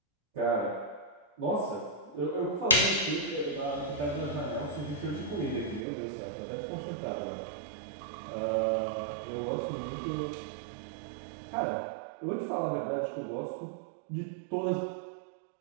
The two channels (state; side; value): drops out; left; at 5.8 s